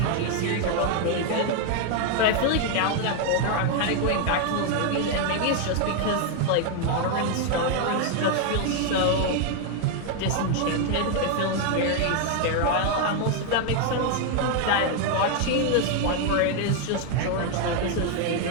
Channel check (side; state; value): both; different; correlation 0.01